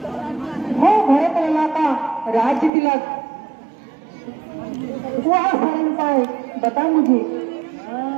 हो भरत लला का राज्य तिलक, वह सरल उपाय बता मुझे।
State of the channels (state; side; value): drops out; left; at 2.7 s